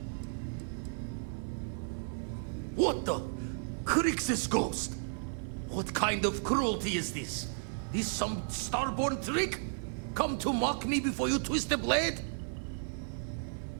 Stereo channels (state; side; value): silent; left; digital silence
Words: What the? Crix's ghost? What kind of cruelty is this? This some starborn trick? Come to mock me before you twist the blade?